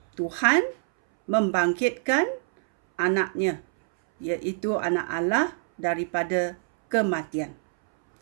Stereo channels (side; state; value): left; silent; 62 dB below the other